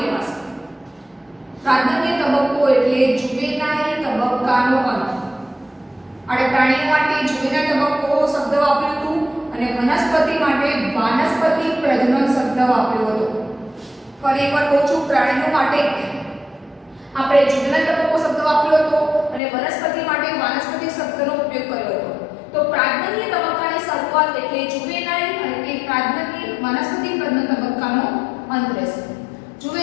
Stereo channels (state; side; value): drops out; right; at 19.4 s